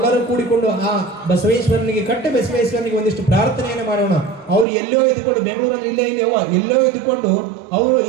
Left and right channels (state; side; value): drops out; left; at 4.7 s